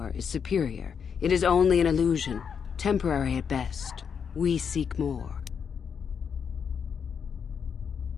is superior, it is only an illusion, temporary at best. We seek more.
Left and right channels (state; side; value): quieter; right; 6.9 dB